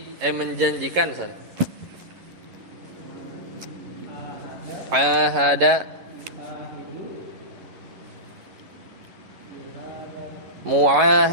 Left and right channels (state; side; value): late; left; 11 ms